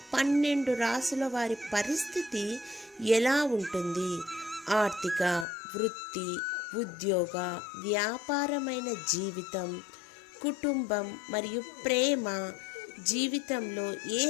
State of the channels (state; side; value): drops out; right; at 5.5 s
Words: 12 రాశుల వారి పరిస్థితి ఎలా ఉంటుంది, ఆర్థిక, వృత్తి, ఉద్యోగ, వ్యాపారమైన జీవితం, కుటుంబం మరియు ప్రేమ జీవితంలో ఏ